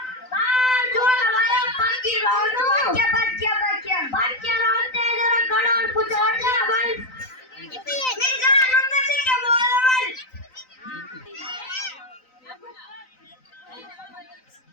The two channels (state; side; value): late; right; 3.9 ms